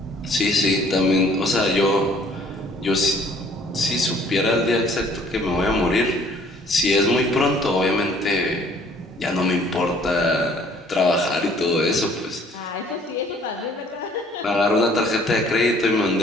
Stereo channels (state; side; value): normal; both; correlation 0.57